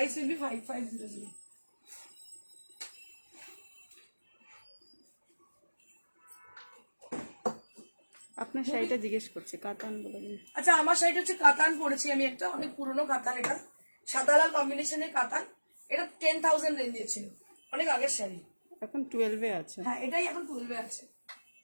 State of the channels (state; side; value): inverted; both; correlation -1.00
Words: will be 5500. আপনার শাড়িটা জিজ্ঞেস করছে কাতান বলে। আচ্ছা আমার শাড়িটা হচ্ছে কাতান পরেছি আমি, একটা অনেক পুরনো কাতান, এটা সাদা লাল কম্বিনেশনের কাতান। এটা 10,000 রেঞ্জে ছিল, অনেক আগের শাড়ি, এখন 12-এ আছে। হ্যাঁ এটাই এখন 12-এ আছে।